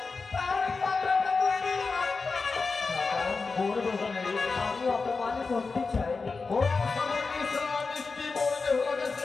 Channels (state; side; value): quieter; right; 4.3 dB